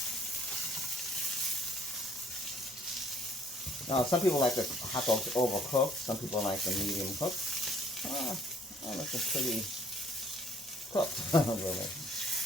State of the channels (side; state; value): both; normal; correlation 0.59